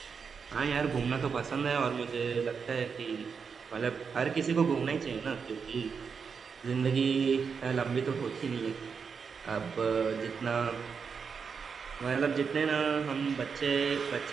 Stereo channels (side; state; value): left; quieter; 5.9 dB